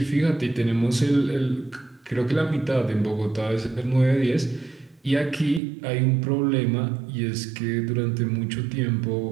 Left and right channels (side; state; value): left; drops out; at 5.6 s